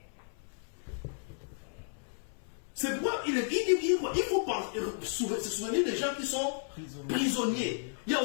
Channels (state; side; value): silent; right; 56 dB below the other